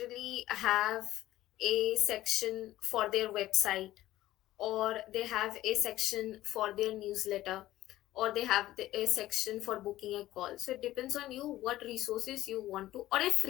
have a section for their website, or they have a section for their newsletter, or they have a section for booking a call. So it depends on you what resources you want to, or a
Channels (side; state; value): right; quieter; 15.2 dB